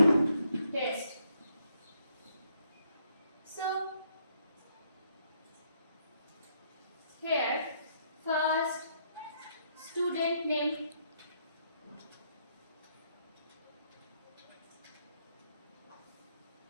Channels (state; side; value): inverted; both; correlation -0.73